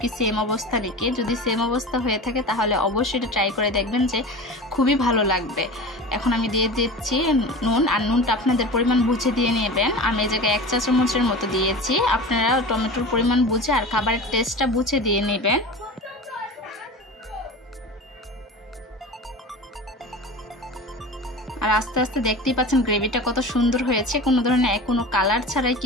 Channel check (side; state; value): both; normal; correlation 0.32